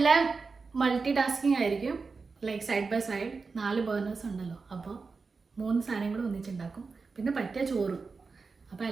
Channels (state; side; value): quieter; left; 4.5 dB